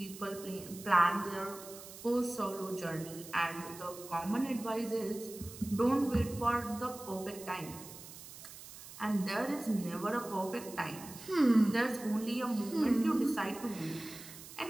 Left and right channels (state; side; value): noise; right; hiss, 15 dB below the sound